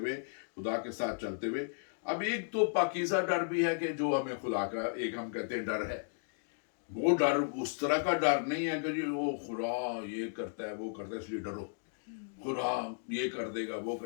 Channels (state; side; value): silent; right; digital silence